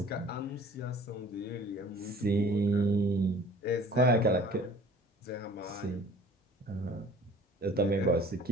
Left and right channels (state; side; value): normal; both; correlation 0.49